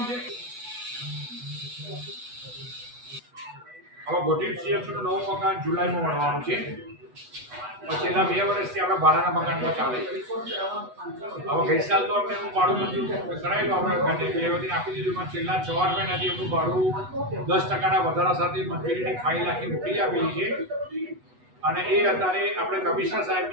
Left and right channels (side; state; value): left; late; 8.1 ms